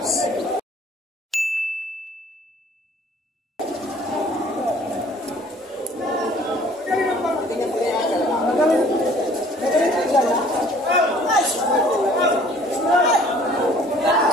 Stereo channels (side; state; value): both; normal; correlation 0.54